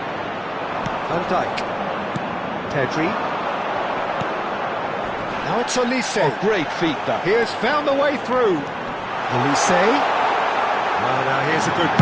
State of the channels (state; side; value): identical; both; correlation 1.00